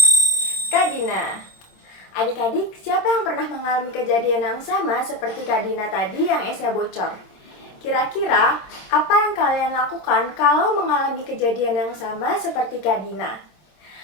Kak Dina. Adik-adik, siapa yang pernah mengalami kejadian yang sama seperti Kak Dina tadi yang esnya bocor? Kira-kira, apa yang kalian lakukan kalau mengalami kejadian yang sama seperti Kak Dina?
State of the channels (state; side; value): late; right; 26 ms